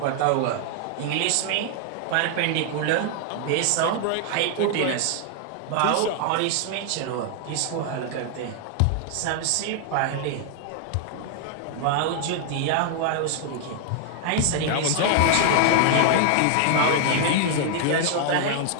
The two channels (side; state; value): both; different; correlation 0.00